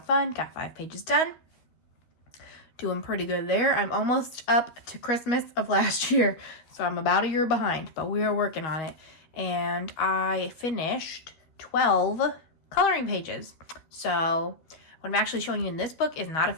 fun. Got 5 pages done. Doing pretty good there. I'm almost up to Christmas of last year, so I'm about a year behind, but we are working on it. And I finished 12 coloring pages. So what I'm actually showing you in this book is not a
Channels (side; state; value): right; late; 13 ms